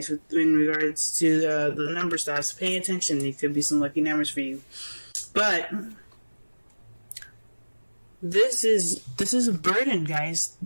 in regards to the number stuff. So pay attention. There could be some lucky numbers for you, but this is a burden, guys.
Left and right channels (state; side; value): inverted; both; correlation -1.00